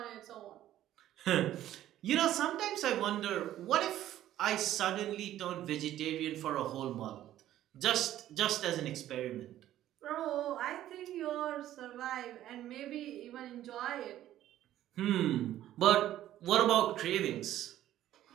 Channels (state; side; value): quieter; left; 12.9 dB